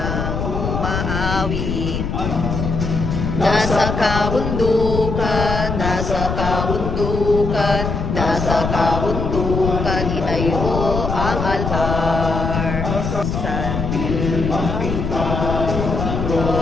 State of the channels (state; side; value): noise; left; rumble, 3 dB below the sound